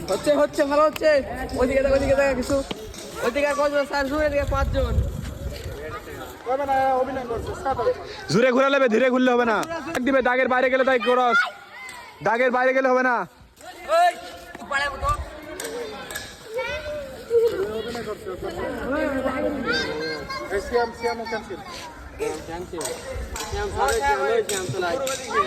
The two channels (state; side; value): identical; both; correlation 1.00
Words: হচ্ছে হচ্ছে ভালো হচ্ছে। ওইদিকে ওইদিকে দেখা কিছু, ওইদিকে কজন? 4 জন, এদিকে 5 জন। জোরে ঘুরা লেবে, ধীরে ঘুরলে হবে না। দিবে দাগের বাইরে গেলে তাই ক্রস, দাগের বাইরে গেলে হবে না।